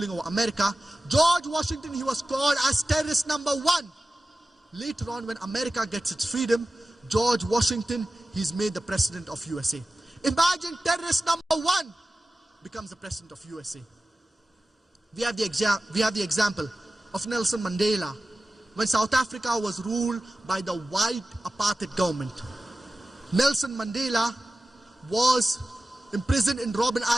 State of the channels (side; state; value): both; normal; correlation 0.95